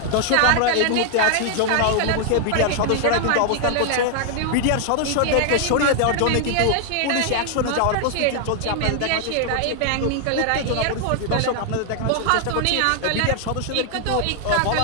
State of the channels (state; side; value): different; both; correlation 0.00